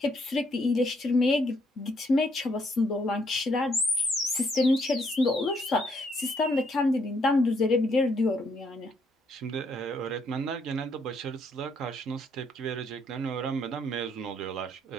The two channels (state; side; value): normal; both; correlation 0.71